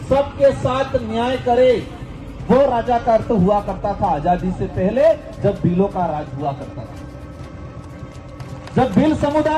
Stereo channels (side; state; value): both; identical; correlation 1.00